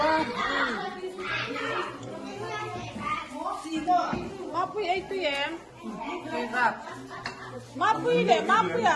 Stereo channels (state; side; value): identical; both; correlation 1.00